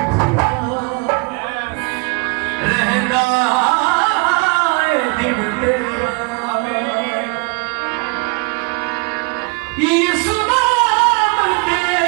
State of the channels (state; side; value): quieter; left; 29.9 dB